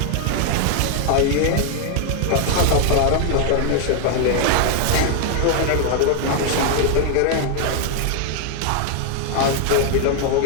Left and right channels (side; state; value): both; different; correlation 0.00